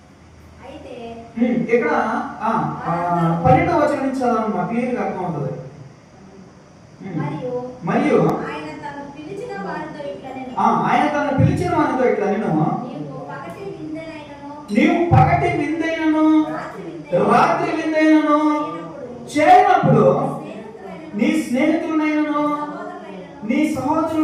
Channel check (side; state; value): both; identical; correlation 1.00